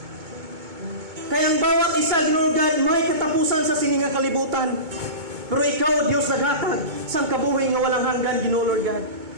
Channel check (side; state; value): left; late; 2.2 ms